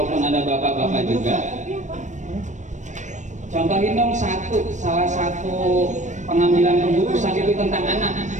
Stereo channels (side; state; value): left; late; 0.35 ms